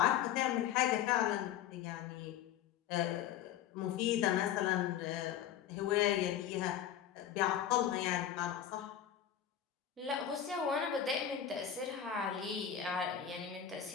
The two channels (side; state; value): right; quieter; 9.9 dB